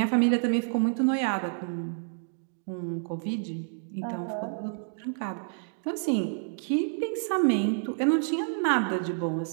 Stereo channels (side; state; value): left; silent; digital silence